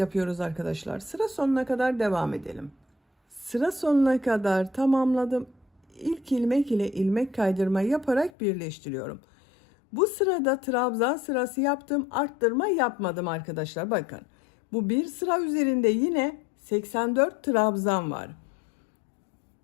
arkadaşlar. Sıra sonuna kadar devam edelim. Sıra sonuna kadar tamamladım. İlk ilmek ile ilmek kaydırma yaparak birleştiriyorum. Bu sırada trabzan sırası yaptım. Arttırma yapmadım arkadaşlar. Bakın. Bu bir sıra üzerinde yine 84 trabzan var.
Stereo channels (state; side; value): drops out; right; at 8.3 s